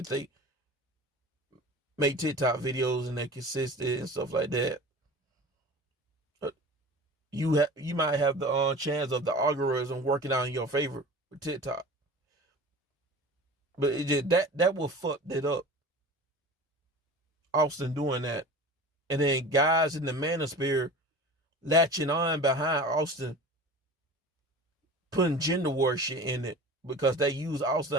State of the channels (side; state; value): both; normal; correlation 0.37